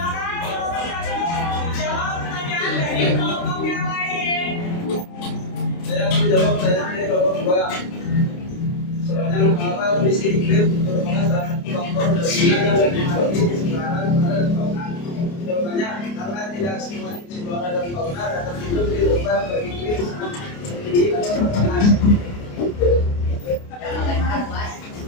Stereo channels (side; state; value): right; late; 29 ms